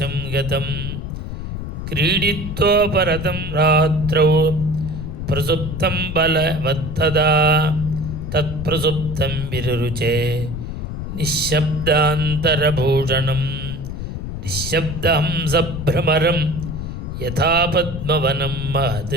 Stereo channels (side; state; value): left; noise; rumble, 6 dB below the sound